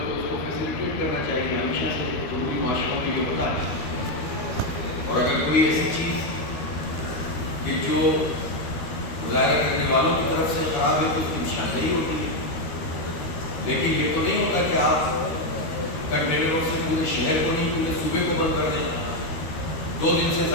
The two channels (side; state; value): right; late; 13 ms